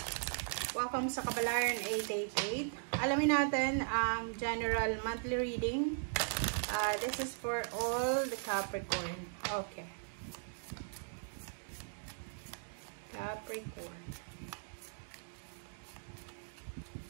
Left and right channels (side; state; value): left; silent; digital silence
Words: Welcome sa Kabalaran 888. Alamin natin ang general monthly reading. This is for all the Capricorn. Okay. Capricorn.